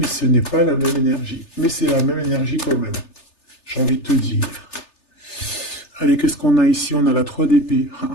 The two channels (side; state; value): right; late; 3.3 ms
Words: ce n'est pas la même énergie. Mais c'est la même énergie quand même. J'ai envie de te dire. Allez, qu'est-ce qu'on a ici? On a la 3 d'épée.